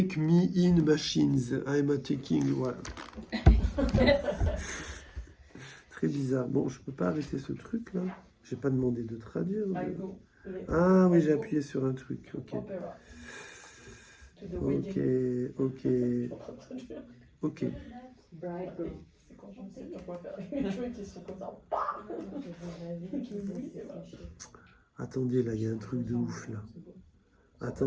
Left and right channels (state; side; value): identical; both; correlation 1.00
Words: me in machines. I'm attacking. Voilà. Très bizarre. Bon, je peux pas arrêter ce truc là. J'ai pas demandé de traduire. Ah oui, j'ai appuyé sur un truc. Ok. Ok. Ok. Ok. C'est Je sais pas quoi faire avec mes cheveux qui sont comme ça. Attendez, là, il y a un truc de ouf, là.